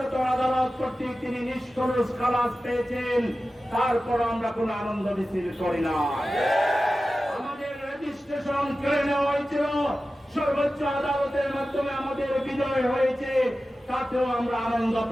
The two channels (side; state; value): both; normal; correlation 0.94